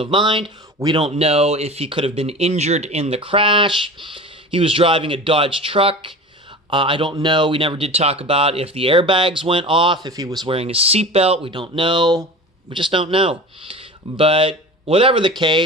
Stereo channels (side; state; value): both; normal; correlation 0.35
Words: mind. We don't know if he could have been injured in the crash. He was driving a Dodge truck. I don't know. We never did talk about if the airbags went off, if he was wearing a seatbelt. We don't know. We just don't know. But whatever the